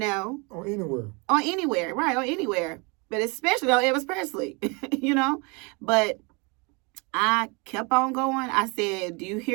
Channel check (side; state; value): left; quieter; 30.1 dB